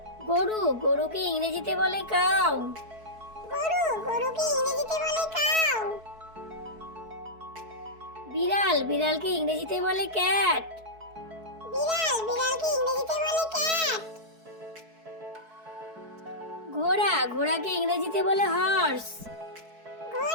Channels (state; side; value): late; left; 4.6 ms